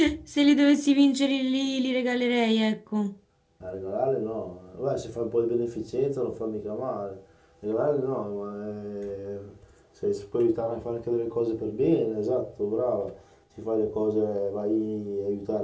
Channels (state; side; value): identical; both; correlation 1.00